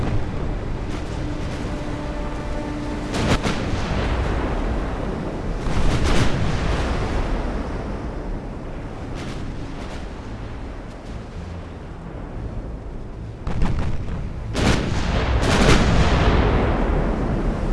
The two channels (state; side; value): identical; both; correlation 1.00